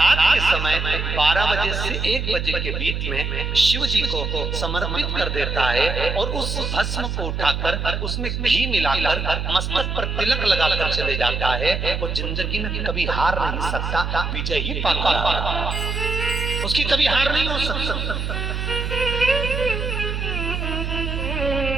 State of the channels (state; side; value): noise; right; hum, 3 dB below the sound